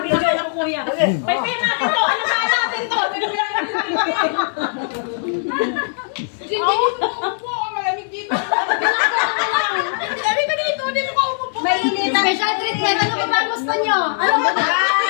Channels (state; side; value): silent; right; digital silence